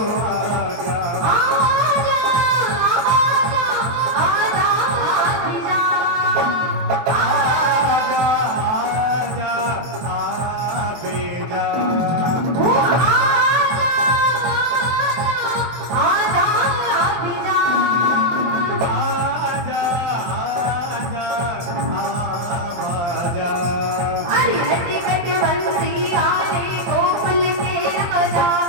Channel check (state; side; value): late; left; 23 ms